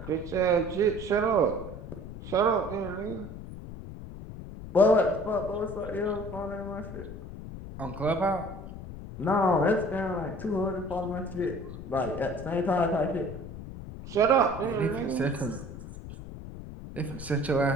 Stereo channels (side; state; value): left; noise; rumble, 11 dB below the sound